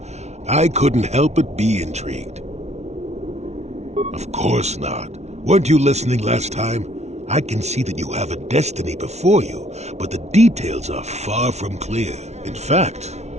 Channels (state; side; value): late; left; 0.32 ms